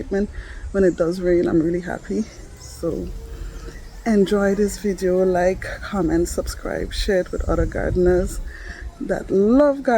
when it does rain, I'm really happy. So enjoy this video, like, comment, subscribe, share it with other gardeners that love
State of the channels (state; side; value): identical; both; correlation 1.00